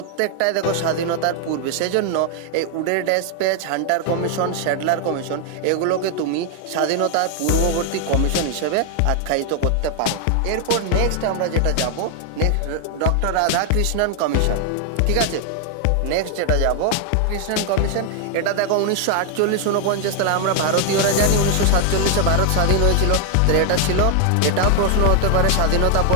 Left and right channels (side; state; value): both; different; correlation 0.00